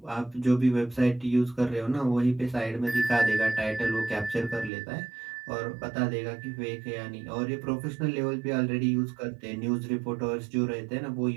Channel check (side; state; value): left; drops out; at 4.7 s